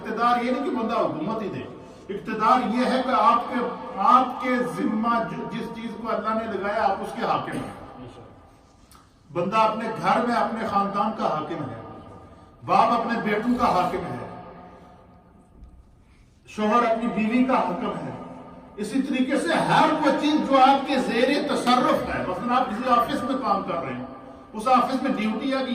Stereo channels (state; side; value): identical; both; correlation 1.00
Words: یہ نہیں کہ بندہ حکومت ہی دے، اقتدار یہ ہے کہ آپ کے ذمہ جس چیز کو اللہ نے لگایا آپ اس کے حاکم ہیں۔ بندہ اپنے گھر میں اپنے خاندان کا حاکم ہے، باپ اپنے بیٹوں کا حاکم ہے، شوہر اپنی بیوی کا حاکم ہے۔ اسی طریقے سے ہر وہ چیز جو آپ کے زیر تصرف ہے، مثلا آپ کسی آفس میں کام کر رہے ہیں، اس آفس میں ڈیوٹی ہے کہ